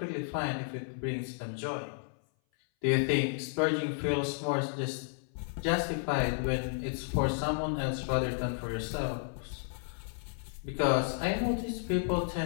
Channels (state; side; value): silent; right; 56 dB below the other